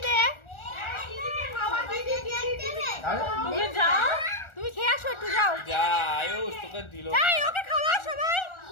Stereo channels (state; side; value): late; right; 1.4 ms